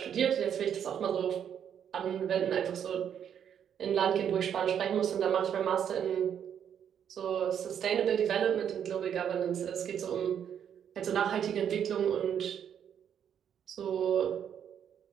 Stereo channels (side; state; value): left; quieter; 8.7 dB